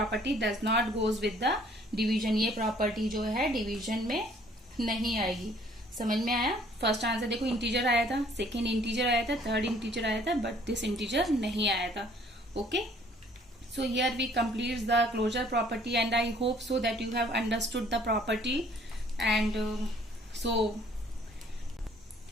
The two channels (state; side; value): normal; both; correlation 0.59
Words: does not goes with the division. ये property जो है डिवीजन में नहीं आएगी. समझ में आया. फर्स्ट आंसर देखो इंटीजर आया था, सेकेंड इंटीजर आया था, थर्ड इंटीजर आया था, बट दिस इंटीजर नहीं आया था. Okay, so here we complete the closure property and I hope so that you have understood the property. And so